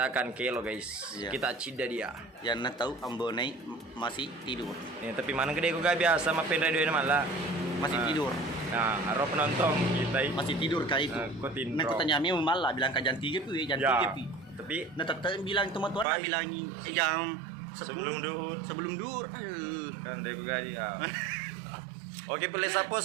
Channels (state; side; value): drops out; left; at 16.1 s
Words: akan kelo, guys. Iya. Kita cida dia. Yang nak tahu Ambonai masih tidur. Nih, tapi mana gede gue gak biasa sama radio ini Malla. Masih tidur. Nah, harap penonton kita Masih tidur kah itu? Ikutin, Nah, bro. kata nyami Malla bilang ke jam 3 pi, jam Ya, 3 pi. tapi Nah, tetap bilang teman tuan Pagi. bilang jam 10 Sebelum duhur. Sebelum duhur. kan dari gue ya. Oke, Pele Sapo,